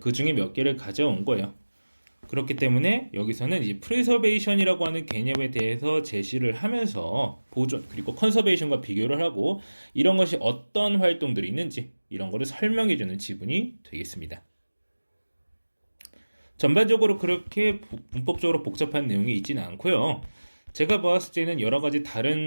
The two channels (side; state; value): both; inverted; correlation -1.00